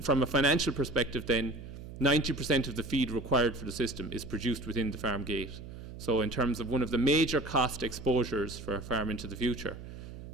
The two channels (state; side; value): noise; right; hum, 12 dB below the sound